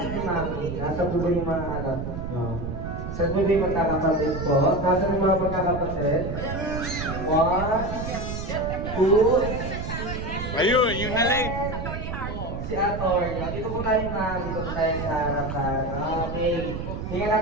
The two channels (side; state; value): right; noise; rumble, 6 dB below the sound